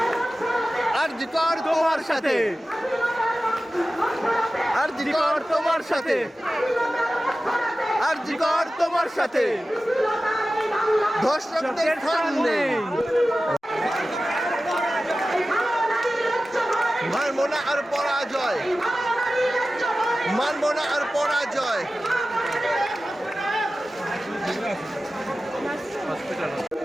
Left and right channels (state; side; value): normal; both; correlation 0.95